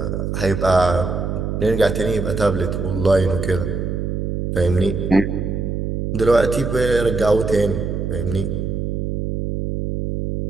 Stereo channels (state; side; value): noise; right; hum, 2 dB below the sound